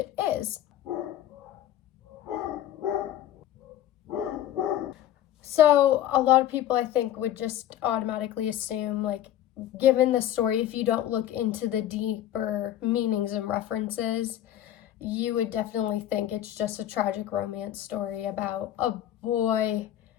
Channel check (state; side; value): quieter; right; 12.1 dB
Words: is. So a lot of people, I think, would just automatically assume, like, given the story, if you don't look into the deeper meanings and references, you would definitely think it's just a tragic romance story about a boy